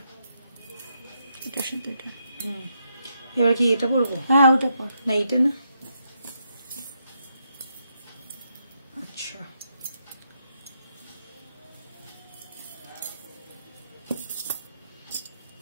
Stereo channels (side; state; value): both; inverted; correlation -0.79